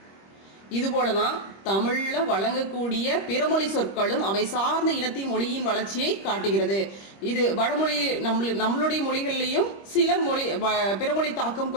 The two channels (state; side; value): late; right; 25 ms